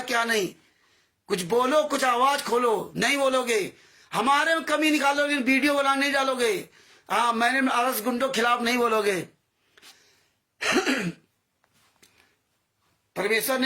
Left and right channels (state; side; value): identical; both; correlation 1.00